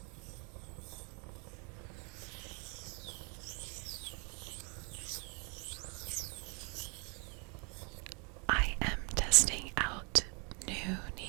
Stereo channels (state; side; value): quieter; left; 33.7 dB